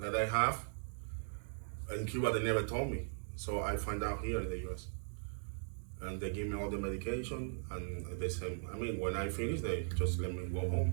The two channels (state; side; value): silent; left; digital silence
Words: I have in Cuba, they never told me. So I find out here in the US. And they give me all the medication and they say, I mean, when I finish, they just let me go home.